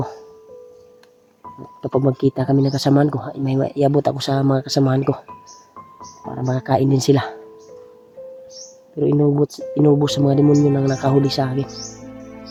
Kapag magkita kami ng kasamahan ko, may iabot ako sa mga kasamahan ko para makakain din sila. Pero inubos sa mga demonyo nang nakahuli sa akin.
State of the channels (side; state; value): both; identical; correlation 1.00